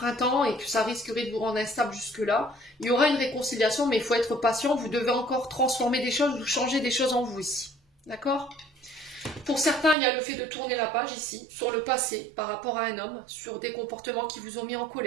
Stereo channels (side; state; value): left; drops out; at 10.0 s